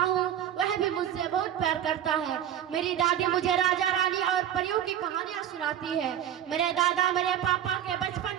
हूँ, वह भी मुझसे बहुत प्यार करता है। मेरी दादी मुझे राजा रानी और परियों की कहानियाँ सुनाती है। मेरे दादा मेरे पापा के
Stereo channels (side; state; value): left; quieter; 10.5 dB